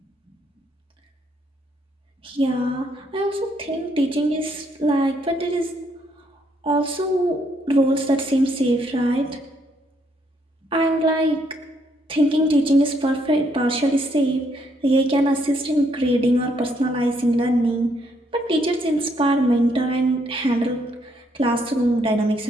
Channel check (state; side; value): normal; both; correlation 0.72